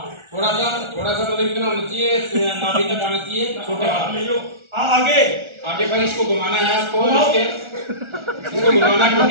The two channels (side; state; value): left; late; 1.4 ms